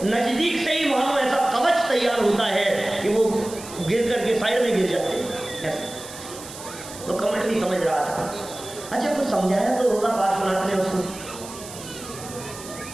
नजदीक से ही मानो ऐसा कवच तैयार होता है कि वो गिर करके साइड में गिर जाते हैं। ऐसा तो कमठ भी समझ रहा था। अच्छा, कुछ समझाया तो होगा पार्श्वनाथ ने उसको,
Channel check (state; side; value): noise; right; hiss, 14 dB below the sound